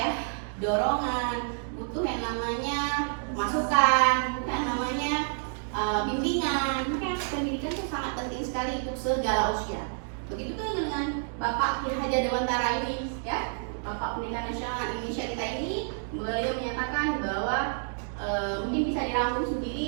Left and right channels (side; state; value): left; silent; digital silence